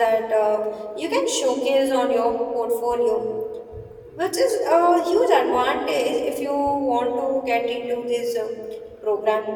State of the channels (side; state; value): both; identical; correlation 1.00